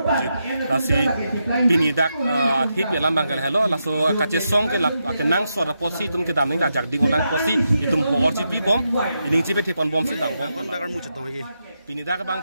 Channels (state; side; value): inverted; both; correlation -0.85